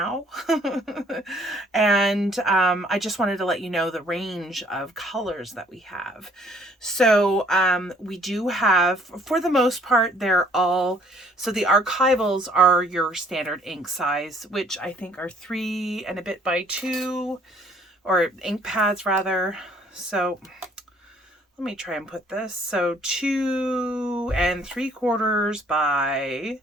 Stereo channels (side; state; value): both; normal; correlation 0.60